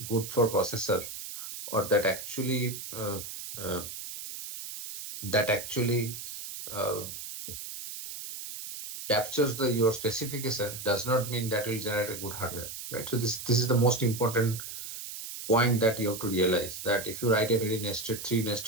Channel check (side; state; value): right; noise; hiss, 9 dB below the sound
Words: good for processor, or uh, that actually uh, captures your specification, does not mean that will generate a good hardware, right? So this is the most important point that you have to realize, that if you write a very nested, three